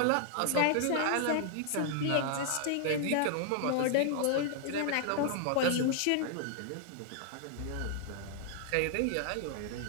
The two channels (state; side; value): different; both; correlation -0.01